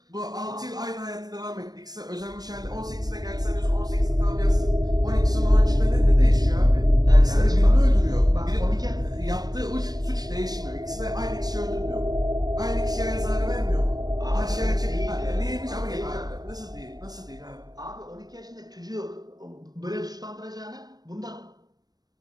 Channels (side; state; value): left; late; 0.19 ms